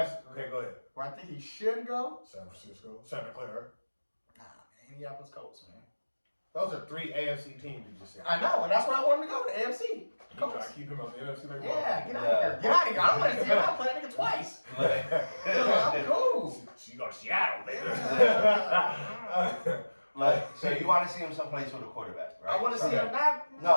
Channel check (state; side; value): inverted; both; correlation -1.00